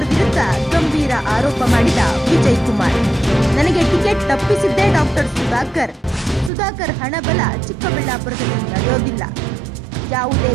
ವಿರುದ್ಧ ಗಂಭೀರ ಆರೋಪ ಮಾಡಿದ ವಿಜಯಕುಮಾರ್. ನನಗೆ ಟಿಕೆಟ್ ತಪ್ಪಿಸಿದ್ದೇ ಡಾಕ್ಟರ್ ಸುಧಾಕರ್. ಸುಧಾಕರ್ ಹಣಬಲ ಚಿಕ್ಕಬಳ್ಳಾಪುರದಲ್ಲಿ ನಡೆಯೋದಿಲ್ಲ. ಯಾವುದೇ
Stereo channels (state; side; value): drops out; left; at 6.5 s